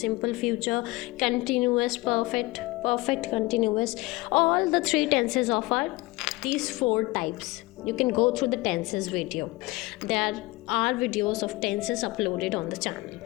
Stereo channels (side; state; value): right; quieter; 21.8 dB